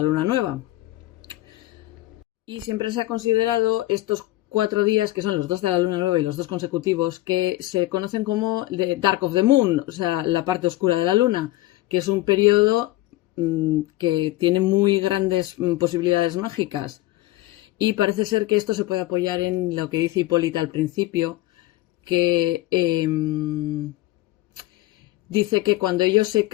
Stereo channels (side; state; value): right; quieter; 17.1 dB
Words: luna nueva. Y siempre se ha considerado estos 4 días, que son los 2 de la luna nueva y los 2 consecutivos, que se conocen como the Dark of the Moon, o sea, la parte oscura de la luna, que es un periodo que tiene muy grandes posibilidades mágicas. Y parece ser que esto se puede apoyar en lo que dice Hipólita al principio, que dice que cuando ellos se